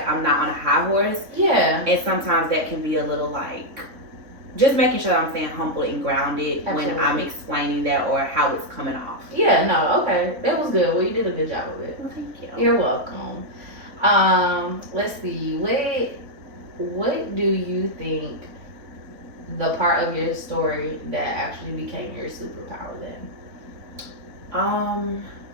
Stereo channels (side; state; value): left; late; 3.7 ms